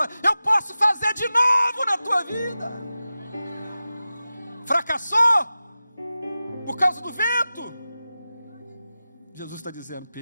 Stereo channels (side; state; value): both; inverted; correlation -0.94